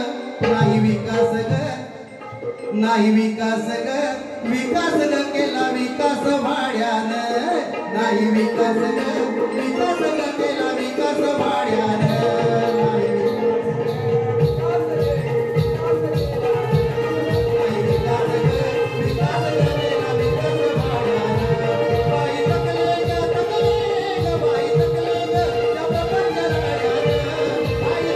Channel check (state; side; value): identical; both; correlation 1.00